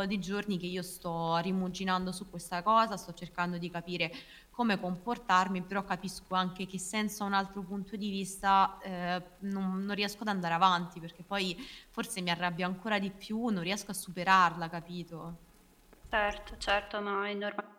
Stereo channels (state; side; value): identical; both; correlation 1.00